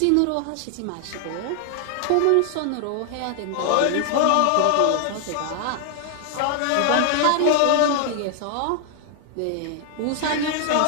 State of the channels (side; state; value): both; different; correlation 0.00